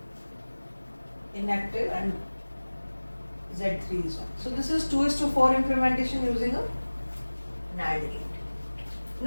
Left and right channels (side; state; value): both; inverted; correlation -1.00